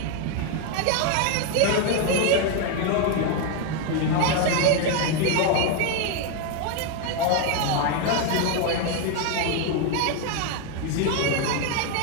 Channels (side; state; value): both; different; correlation 0.01